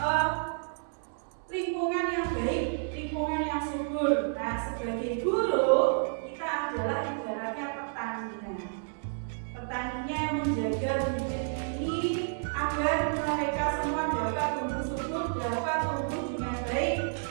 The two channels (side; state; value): left; silent; 58 dB below the other